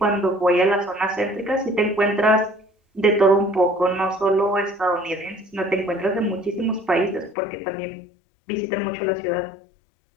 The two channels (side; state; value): right; drops out; at 7.4 s